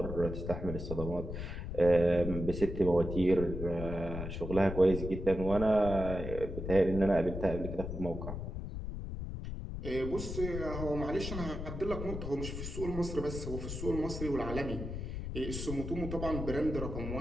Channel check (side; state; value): left; noise; rumble, 6 dB below the sound